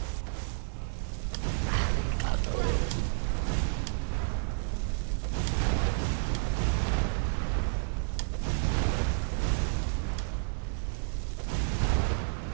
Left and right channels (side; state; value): left; silent; digital silence